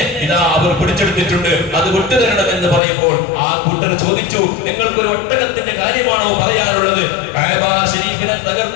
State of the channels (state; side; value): drops out; right; at 2.8 s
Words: ഇതാ അവർ പിടിച്ചെടുത്തിട്ടുണ്ട്, അത് വിട്ടുതരണമെന്ന് പറയുമ്പോൾ ആ കൂട്ടർ ചോദിച്ചു, നിങ്ങൾക്കൊരു ഒട്ടകത്തിന്റെ കാര്യമാണോ പറയാനുള്ളത്? കഅബ ശരീഫിനെ